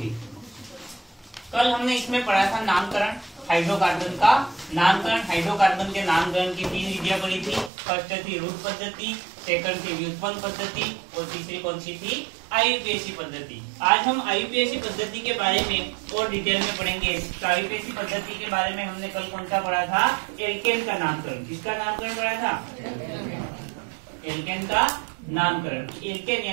कल हमने इसमें पढ़ा था नामकरण हाइड्रोकार्बन का। नामकरण हाइड्रोकार्बन के नामकरण की 3 विधियां पढ़ी थी। फर्स्ट थी रूट पद्धति, सेकंड थी व्युत्पन्न पद्धति और तीसरी कौन सी थी? आईयूपीएसी पद्धति। आज हम आईयूपीएसी पद्धति के बारे में और डिटेल में पढ़ेंगे। तो आईयूपीएसी पद्धति के बारे में हमने कल कौन सा पढ़ा था? एल्केन का नामकरण। किसका नामकरण पढ़ा था? एल्केन का नामकरण। एल्केन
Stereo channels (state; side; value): drops out; left; at 7.7 s